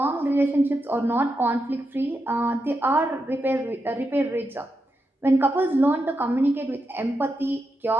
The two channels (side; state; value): both; normal; correlation 0.86